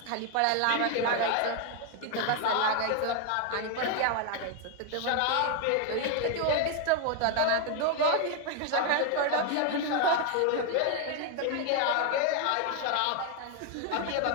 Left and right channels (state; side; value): different; both; correlation 0.01